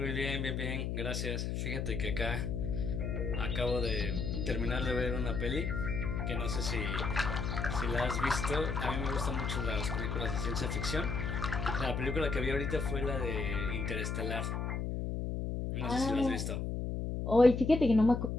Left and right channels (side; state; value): left; noise; hum, 2 dB below the sound